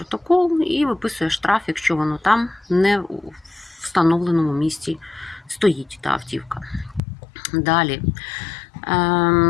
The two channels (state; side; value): drops out; right; at 7.0 s